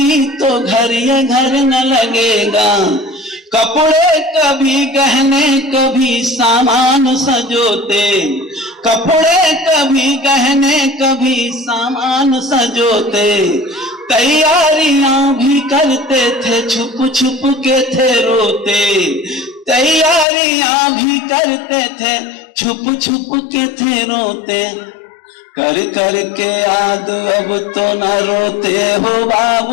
तो घर ये घर न लगेगा। कपड़े कभी गहने कभी सामान सजोते, कपड़े कभी गहने कभी सामान सजोते। तैयारियां भी करते थे छुप छुप के थे रोते, तैयारियां भी करते थे छुप छुप के थे रोते। कर कर के याद अब तो न रोते हो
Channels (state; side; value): drops out; right; at 20.2 s